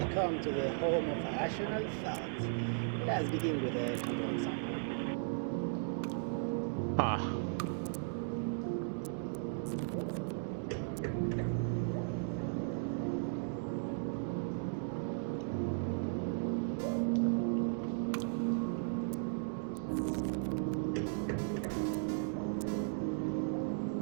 come to the home of rational thought. Let's begin with a control sample. Huh.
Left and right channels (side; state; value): left; silent; digital silence